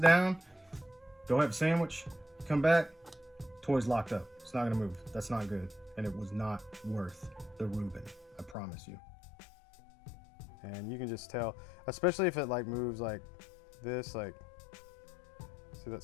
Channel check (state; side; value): drops out; right; at 8.6 s